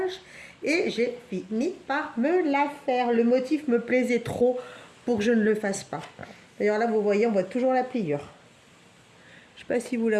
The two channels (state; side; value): identical; both; correlation 1.00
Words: Et j'ai fini par me la faire. Le motif me plaisait trop pour que je ne le fasse pas. D'ailleurs là, vous voyez, on voit toujours la pliure. Je ne sais pas si vous la